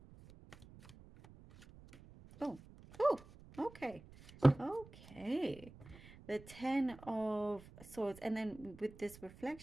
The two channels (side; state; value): right; noise; rumble, 20 dB below the sound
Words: Oh, okay. The Ten of Swords. And then with this